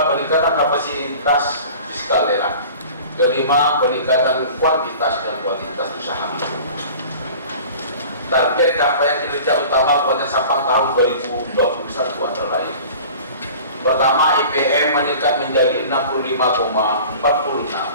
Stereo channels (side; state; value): both; inverted; correlation -0.43